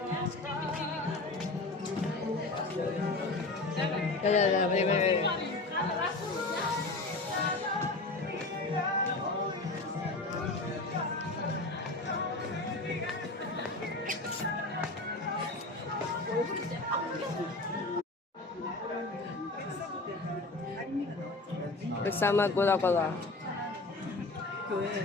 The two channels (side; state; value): right; quieter; 3.1 dB